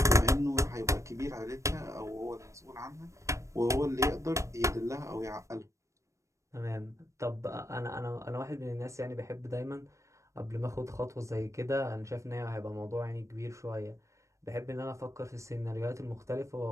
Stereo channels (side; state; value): left; late; 0.15 ms